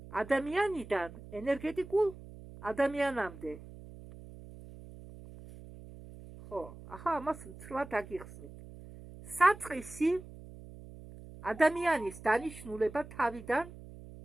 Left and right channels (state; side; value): noise; right; hum, 16 dB below the sound